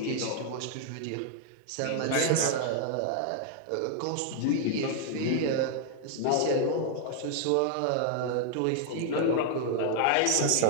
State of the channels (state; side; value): different; both; correlation 0.00